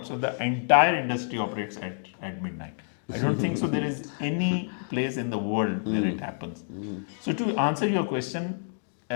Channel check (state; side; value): silent; right; digital silence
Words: So the entire industry operates at midnight. I don't think so there is any place in the world where it happens. So to answer your question,